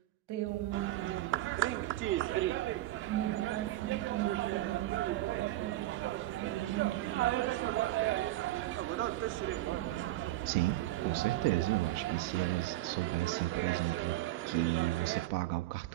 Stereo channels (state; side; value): quieter; left; 16.2 dB